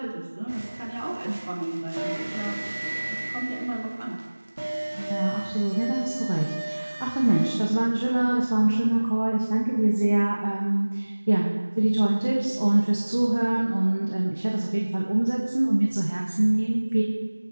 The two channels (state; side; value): inverted; both; correlation -1.00